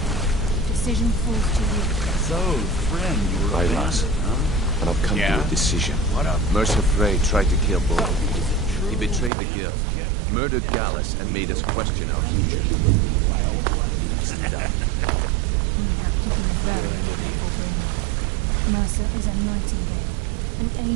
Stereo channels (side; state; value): left; drops out; at 9.3 s